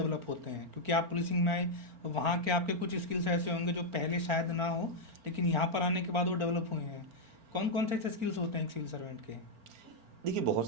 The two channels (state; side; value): late; left; 4.4 ms